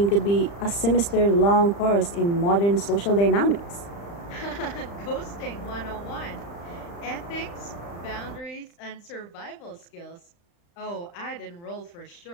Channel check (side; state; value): right; late; 35 ms